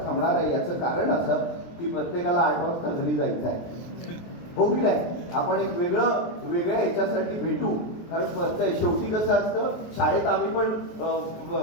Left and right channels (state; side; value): late; right; 23 ms